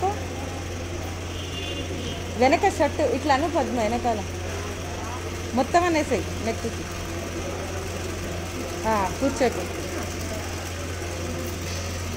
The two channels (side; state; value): both; identical; correlation 1.00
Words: వెనక షర్టు ఇట్లా అను పద్మ. వెనకాల మొత్తం అనేసాయి నెక్కి. కూర్చోకు.